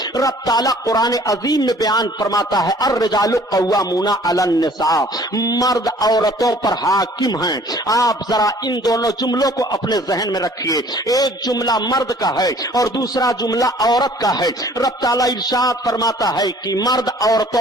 रब ताला कुरान अजीम में बयान फरमाता है अर्रिजालु कव्वामूना अलन निसा, मर्द औरतों पर हाकिम हैं। आप जरा इन दोनों जुमलों को अपने जहन में रखिए, एक जुमला मर्द का है और दूसरा जुमला औरत का है। रब ताला इरशाद फरमाता है कि मर्द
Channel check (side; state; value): both; normal; correlation 0.54